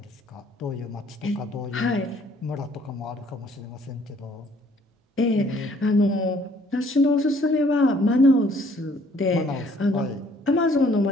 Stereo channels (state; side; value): normal; both; correlation 0.61